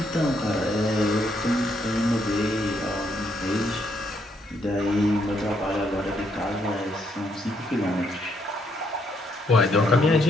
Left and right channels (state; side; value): normal; both; correlation 0.74